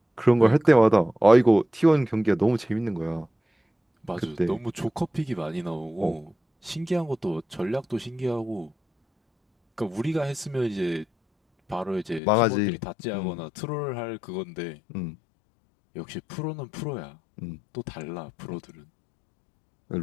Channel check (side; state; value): right; drops out; at 12.2 s